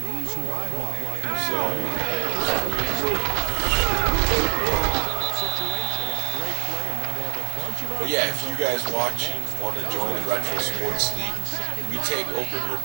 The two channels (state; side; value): quieter; left; 32.5 dB